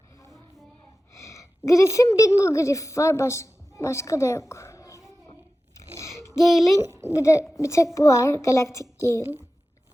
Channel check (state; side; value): normal; both; correlation 0.94